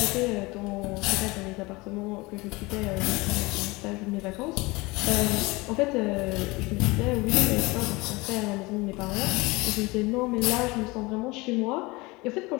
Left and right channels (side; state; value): right; quieter; 23.3 dB